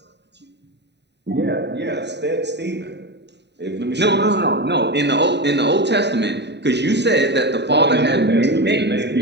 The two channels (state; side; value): late; left; 0.50 ms